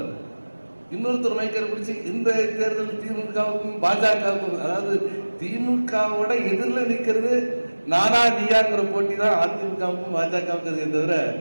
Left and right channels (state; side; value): inverted; both; correlation -1.00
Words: இன்னொருத்தர் மைக்கரை பிடிச்சி இந்த தேர்தல் திமுகவுக்கும் பாஜகவுக்கும், அதாவது திமுகவோட எதிரில் நிற்கிறது நானா நீயாங்கிற போட்டி தான் அதிமுகவுக்கும் பாஜகவுக்கு தவிர